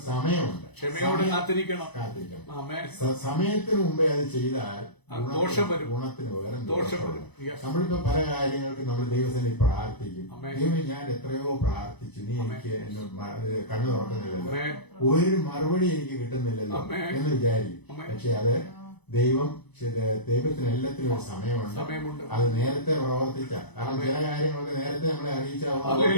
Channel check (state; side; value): late; right; 0.99 ms